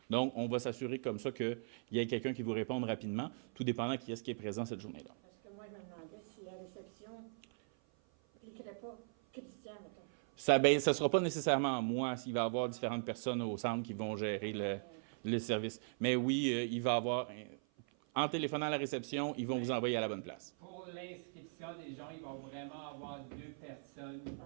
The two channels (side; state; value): left; silent; 52 dB below the other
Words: Donc, on va s'assurer comme ça qu'il y ait quelqu'un qui vous réponde rapidement, tout dépendant qui est-ce qui est présent cette journée-là. Parce que moi, je me demandais si la réception ne cliquerait pas Christian, mettons. Ça ne sera pas nécessairement moi s'il va y avoir différentes personnes au centre qui vont gérer le service. Mais oui, il va y avoir... En téléphonant à la réception, ils vont vous envoyer à la bonne place. Pour l'inscription des gens, ils vont vraiment avoir 2 personnes